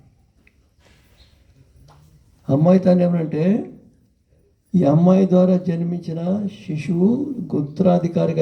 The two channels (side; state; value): both; identical; correlation 1.00